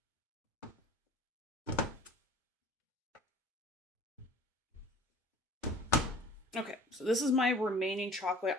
Okay, so this is my remaining chocolate.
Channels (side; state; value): both; normal; correlation 0.47